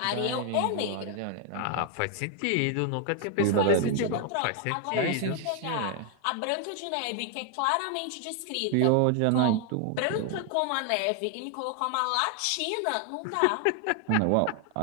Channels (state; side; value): different; both; correlation 0.00